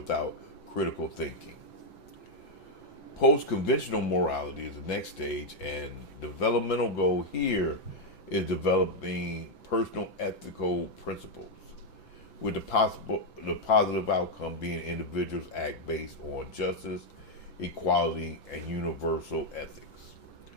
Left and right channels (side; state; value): right; late; 5.9 ms